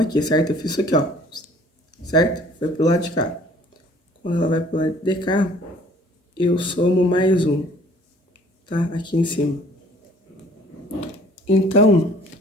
aqui, certo? Eu fiz isso aqui, ó, certo? Foi pro lado de cá. Quando ela vai pro lado de cá, eu somo mais 1, tá? Aqui em cima. Então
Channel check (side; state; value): both; normal; correlation 0.54